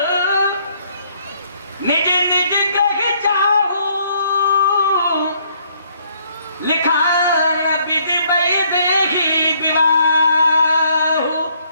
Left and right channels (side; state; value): both; inverted; correlation -0.67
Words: निज निज ग्रह जाहू, लिखा विधि बई देही विवाहु।